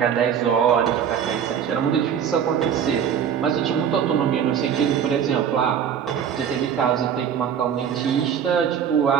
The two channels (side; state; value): left; quieter; 8.3 dB